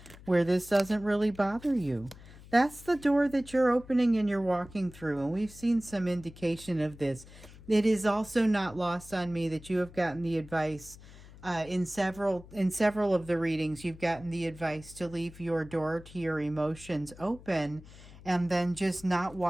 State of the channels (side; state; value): left; noise; hum, 19 dB below the sound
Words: where this doesn't really bother you? That's the door that you're opening and you're walking through. And we've seen some indication of this. It is also not lost on me that you have gotten the advice in several of the readings. You've gotten the advice to leave your door to your emotions open and then just not